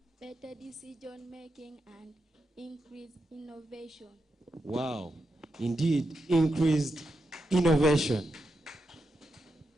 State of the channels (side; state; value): both; normal; correlation 0.87